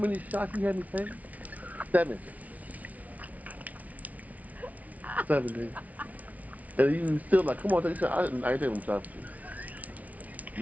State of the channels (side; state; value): left; late; 0.071 ms